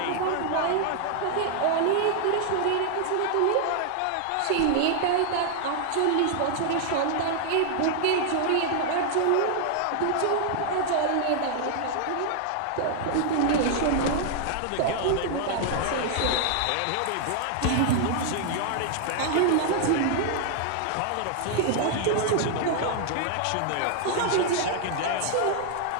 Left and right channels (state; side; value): different; both; correlation 0.00